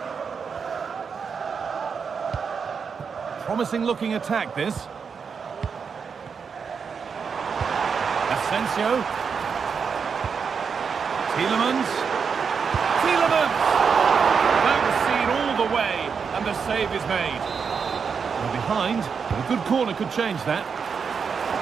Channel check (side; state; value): left; quieter; 6.0 dB